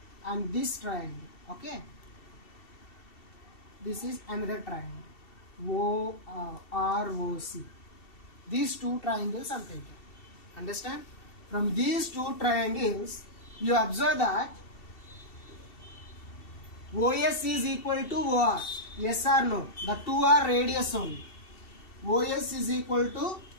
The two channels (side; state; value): right; late; 2.7 ms